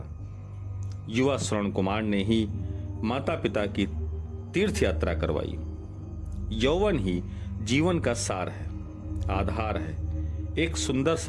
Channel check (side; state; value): both; identical; correlation 1.00